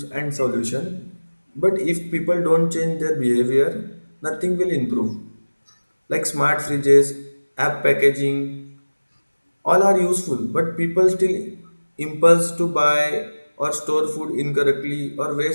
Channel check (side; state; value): both; inverted; correlation -1.00